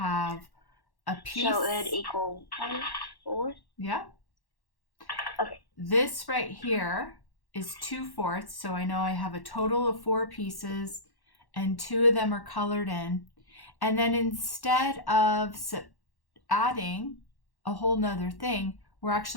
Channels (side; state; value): right; late; 1.1 ms